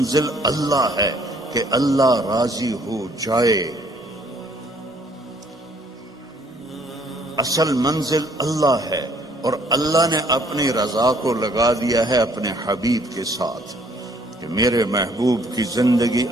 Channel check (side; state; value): both; normal; correlation 0.62